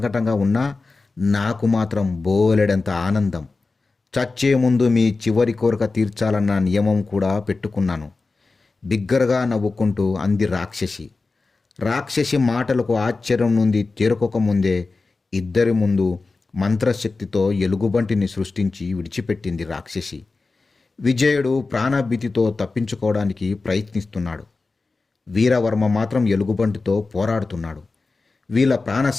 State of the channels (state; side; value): quieter; right; 3.8 dB